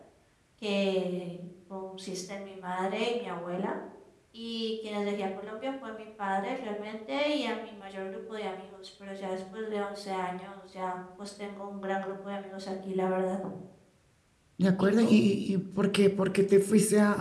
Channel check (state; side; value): identical; both; correlation 1.00